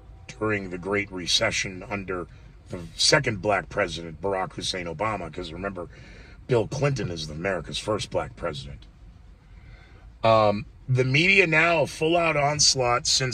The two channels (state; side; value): identical; both; correlation 1.00